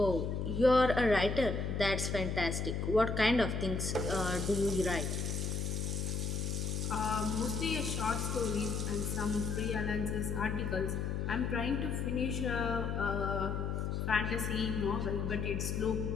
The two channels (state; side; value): noise; left; hum, 1 dB below the sound